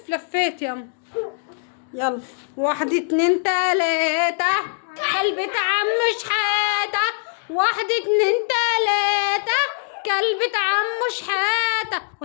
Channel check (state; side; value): silent; right; digital silence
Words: لفيت يلا. يلا 1 2 3 كلبة عم شحاتة. 1 2 3 كلبة عم شحاتة.